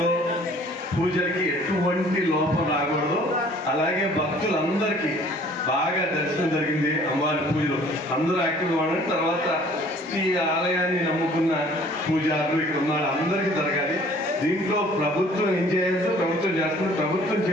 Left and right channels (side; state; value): both; normal; correlation 0.54